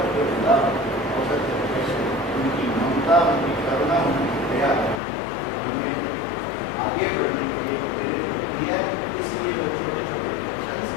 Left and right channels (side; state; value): right; drops out; at 5.0 s